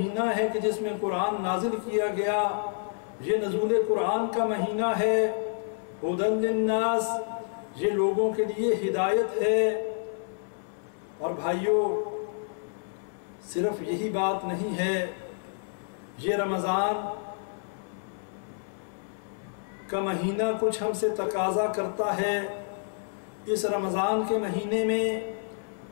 ہے کہ جس میں قرآن نازل کیا گیا، یہ نزول قرآن کا مہینہ ہے۔ ھدی للناس، یہ لوگوں کے لیے ہدایت ہے۔ اور بھائیوں، صرف یہی بات نہیں ہے، یہ رمضان کا مہینہ کچھ ہم سے تقاضا کرتا ہے۔ اس رمضان کے مہینے میں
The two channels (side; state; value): right; silent; 59 dB below the other